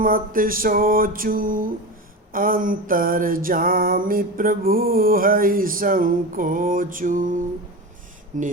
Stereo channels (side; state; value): both; normal; correlation 0.24